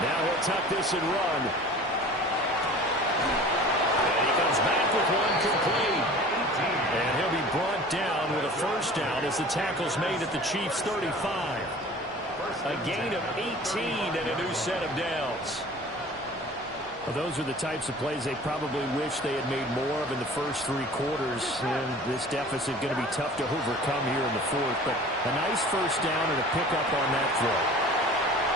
he'll tuck this and run. And he comes back with one complete. And he'll be brought down with a 1st down as the tackle's made at the Chiefs' 35. A gain of 18 and a new set of downs. Well, those are the types of plays they probably wish they had made more of in the first 3 quarters. And this deficit going to be tough to overcome here in the 4th. But a nice 1st down and a pickup on that throw.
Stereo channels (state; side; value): normal; both; correlation 0.43